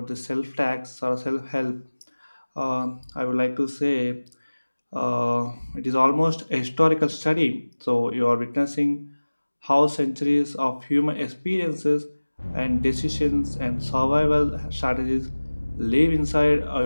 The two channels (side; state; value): both; inverted; correlation -1.00